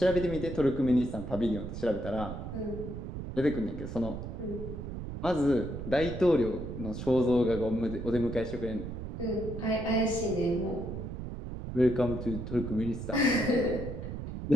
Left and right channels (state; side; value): noise; right; rumble, 7 dB below the sound